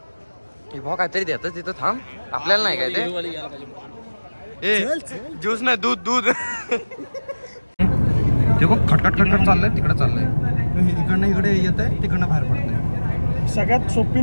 भाऊ काहीतरी देतात तिथं. थांब आपल्याला नाही काय ते. ज्यूस नाही दूध. ते बघ खटखट चाललंय तिकडे चाललंय. इकडनं इकडे येत आहे तिकडनं बाहेर पडतंय. सगळ्यात सोपी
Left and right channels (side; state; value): both; inverted; correlation -1.00